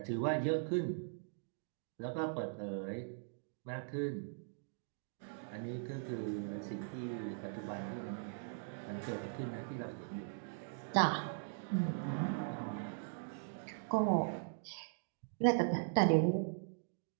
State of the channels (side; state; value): left; silent; digital silence